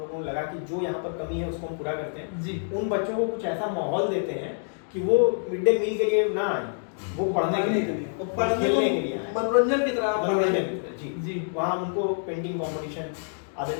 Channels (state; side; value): silent; right; digital silence